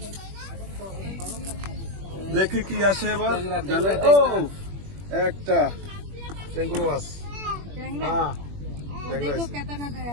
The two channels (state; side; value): late; left; 21 ms